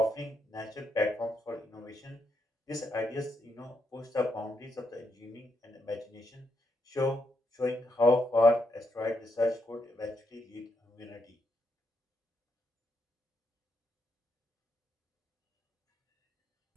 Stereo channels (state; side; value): normal; both; correlation 0.80